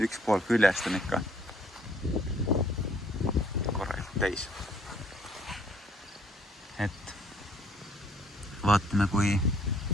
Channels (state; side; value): normal; both; correlation 0.63